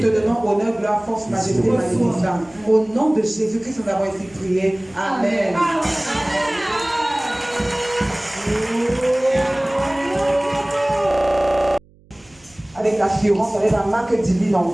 donnons honneur, gloire, force, majesté, magnificence. Au nom de Jésus-Christ, nous avons ainsi prié. Amen. Avec l'assurance, avec la marque divine en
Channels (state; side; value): noise; right; hum, 29 dB below the sound